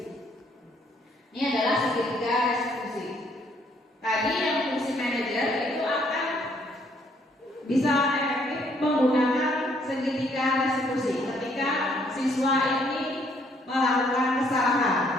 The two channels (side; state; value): both; normal; correlation 0.67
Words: Ini adalah segitiga restitusi. Tadi yang fungsi manajer itu akan bisa efektif menggunakan segitiga restitusi ketika siswa ini melakukan kesalahan.